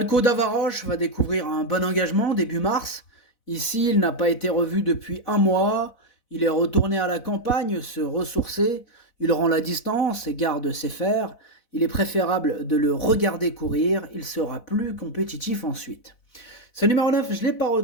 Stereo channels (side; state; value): right; late; 4.0 ms